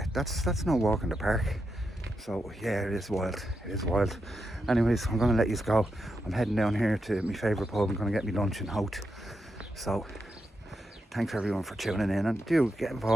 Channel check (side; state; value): both; normal; correlation 0.85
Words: no walk in the park. So yeah, it is wild. Anyways, I'm going to let you go. I'm heading down here to my favourite pub. I'm going to get me lunch in Hout. So thanks everyone for tuning in, and do get